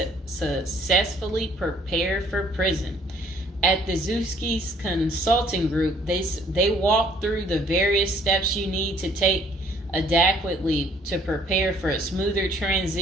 prepare for prison. At the Zuski's Consulting Group, they walk through the various steps you need to take adequately to prepare for a smoother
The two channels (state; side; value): normal; both; correlation 0.60